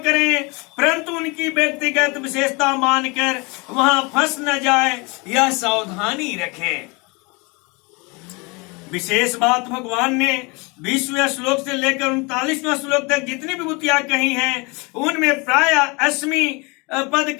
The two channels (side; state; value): right; quieter; 28.2 dB